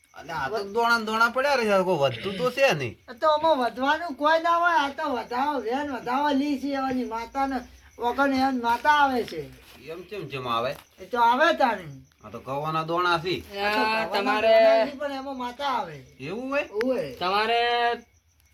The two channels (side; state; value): both; identical; correlation 1.00